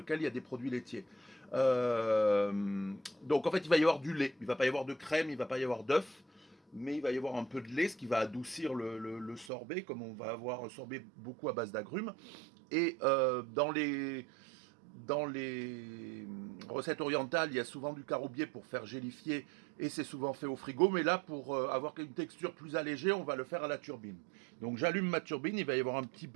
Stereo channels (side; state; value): left; drops out; at 9.5 s